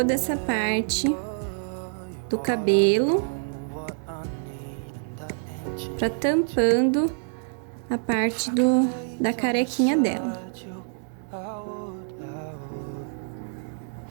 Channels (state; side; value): silent; left; 61 dB below the other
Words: essa parte do cabelo, para tampando a parte da carequinha dela.